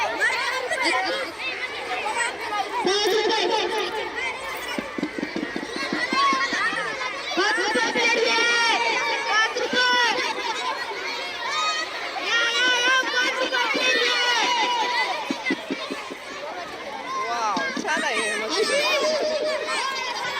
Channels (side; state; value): both; identical; correlation 1.00